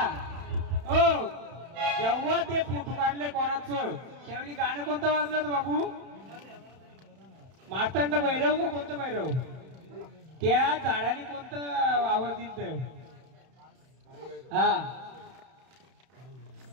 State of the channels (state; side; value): late; left; 31 ms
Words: ओ जेव्हा ते फोटो काढले कोणाचं त्यावेळी गाणं कोणतं वाजलं होतं बाबू? मार्तंड भैरव का कोणतं भैरव? त्या झाडाने कोणतं आवाज दिलं? हा